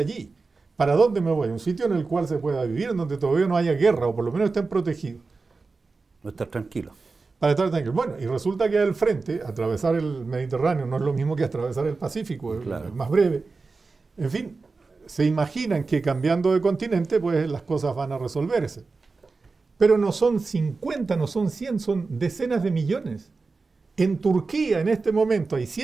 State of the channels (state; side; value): quieter; left; 4.1 dB